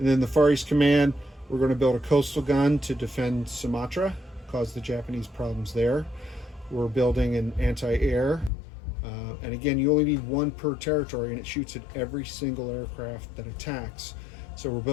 then the Far East Command, we're going to build a coastal gun to defend Sumatra, cause the Japanese problems there. We're building an anti-air, and again, you only need 1 per territory, and it shoots at every single aircraft that attacks. So we're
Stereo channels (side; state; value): right; drops out; at 8.5 s